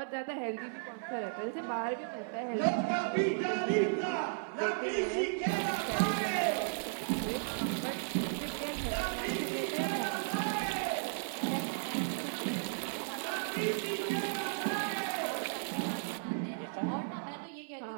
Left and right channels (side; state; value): left; silent; 54 dB below the other